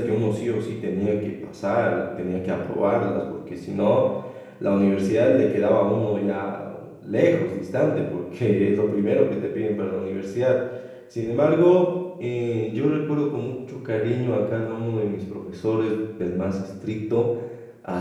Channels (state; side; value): identical; both; correlation 1.00